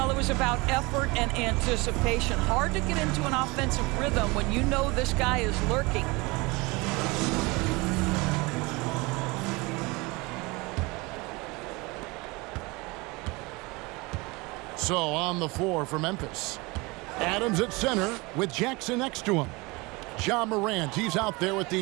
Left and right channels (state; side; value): quieter; left; 24.9 dB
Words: it was about effort and anticipation. Hard to get into an offensive rhythm when you know this guy is lurking. So on the floor for Memphis. Adams at center with Jackson next to him. Ja Morant, he's out there with